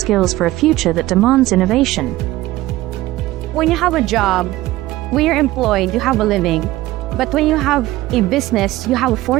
for a future that demands innovation. When you have a job, when you're employed, you have a living. But when you have a business, you have a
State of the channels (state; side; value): quieter; left; 17.1 dB